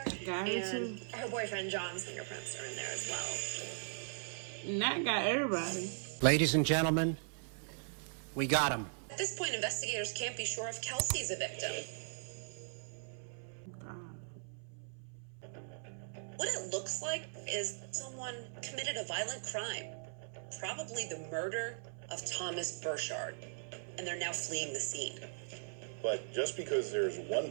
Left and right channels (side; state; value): left; silent; 52 dB below the other